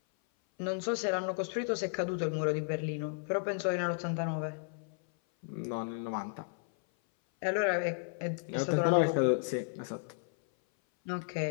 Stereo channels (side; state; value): right; silent; 55 dB below the other